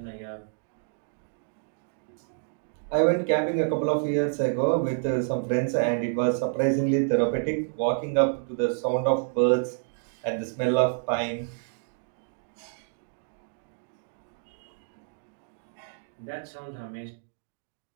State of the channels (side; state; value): left; silent; digital silence